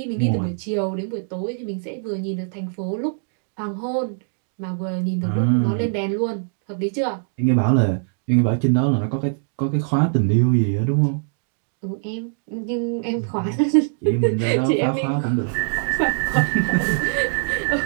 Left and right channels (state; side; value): silent; left; digital silence